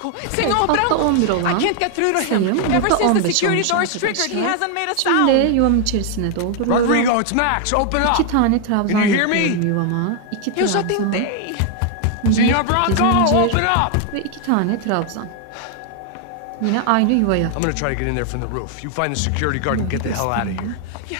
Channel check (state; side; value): different; both; correlation 0.00